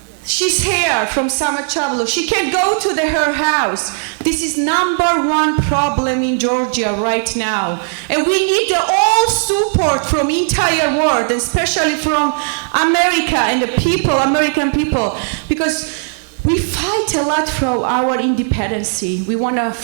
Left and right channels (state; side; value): silent; left; digital silence